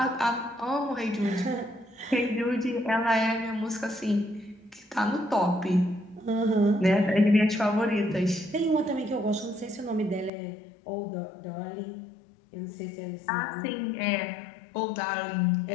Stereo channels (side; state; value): right; drops out; at 10.3 s